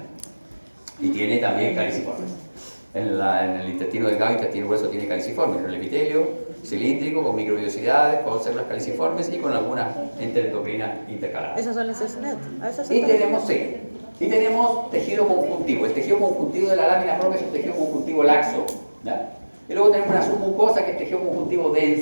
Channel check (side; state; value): both; inverted; correlation -1.00